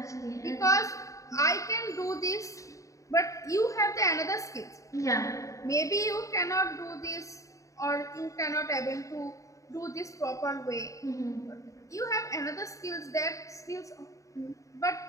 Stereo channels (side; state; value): right; late; 0.16 ms